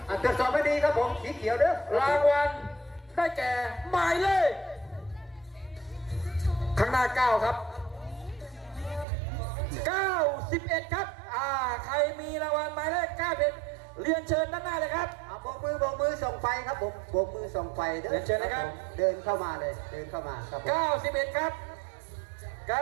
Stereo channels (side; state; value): left; drops out; at 9.1 s